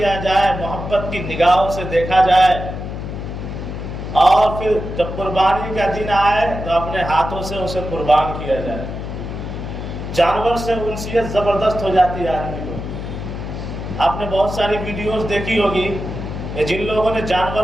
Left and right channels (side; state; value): left; noise; hum, 7 dB below the sound